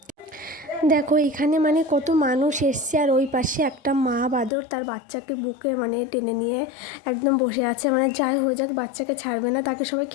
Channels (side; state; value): right; drops out; at 4.5 s